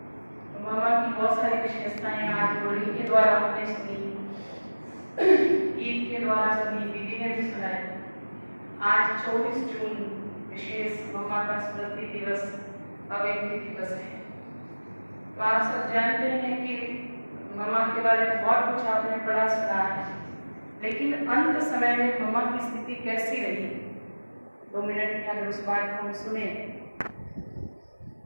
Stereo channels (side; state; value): both; inverted; correlation -1.00